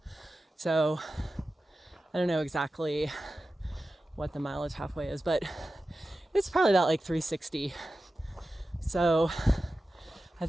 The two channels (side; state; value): both; normal; correlation 0.94